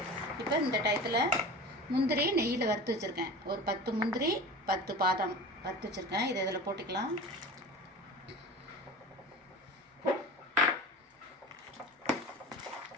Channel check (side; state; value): both; normal; correlation 0.34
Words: இப்போ இந்த டயத்தில் முந்திரி நெய்யில் வறுத்து வச்சுருக்கேன். ஒரு 10 முந்திரி 10 பாதாம் வறுத்து வச்சுருக்கேன். இதை இதில் போட்டுக்கலாம்.